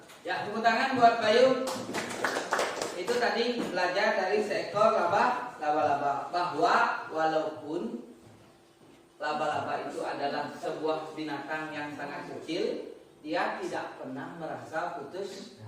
Ya, tepuk tangan buat Bayu. Itu tadi belajar dari seekor laba-laba, bahwa walaupun laba-laba itu adalah sebuah binatang yang sangat kecil, dia tidak pernah merasa putus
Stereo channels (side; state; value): both; identical; correlation 1.00